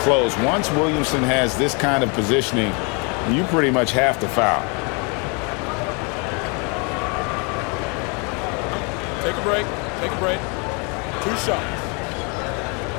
close. Once Williamson has this kind of positioning, you pretty much have to foul. Take a break. Take a break. 2 shots.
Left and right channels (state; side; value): quieter; right; 33.4 dB